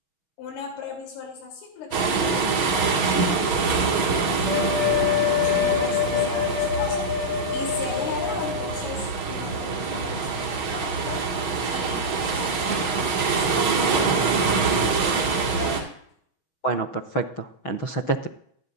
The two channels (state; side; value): late; right; 6.3 ms